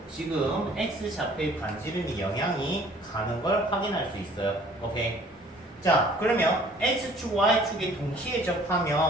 지금 x좌표의 반지름이 영향이 가는 걸 확인할 수 있어요. 오케이. 자, 그러면 x축, y축에 동시에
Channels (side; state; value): both; normal; correlation 0.54